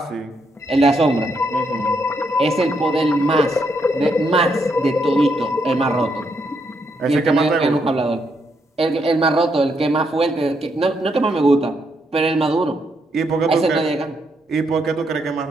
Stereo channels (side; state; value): both; normal; correlation 0.77